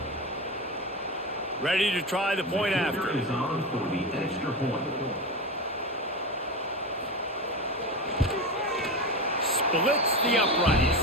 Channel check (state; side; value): normal; both; correlation 0.21